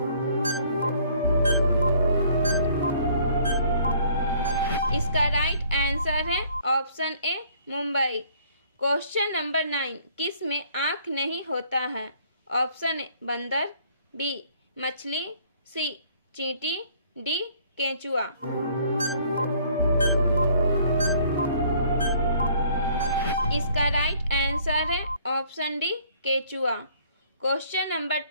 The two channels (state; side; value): inverted; both; correlation -0.59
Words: इसका राइट आंसर है option A Mumbai. Question number 9, किस में आँख नहीं होता है? ऑप्शन ए बंदर, बी मछली, सी चींटी, डी केंचुआ। इसका राइट आंसर है ऑप्शन डी केचुआ। क्वेश्चन नंबर